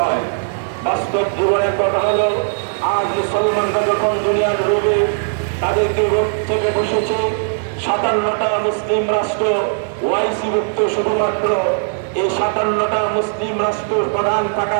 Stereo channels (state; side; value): silent; left; digital silence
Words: বাস্তব জীবনের কথা হলো, আজ মুসলমানরা যখন দুনিয়ার লোভে তাদেরকে রোগ থেকে বসেছে, 57টা মুসলিম রাষ্ট্র ওআইসি মুক্ত, শুধুমাত্র এই 57টা মুসলিম রাষ্ট্র প্রধান থাকা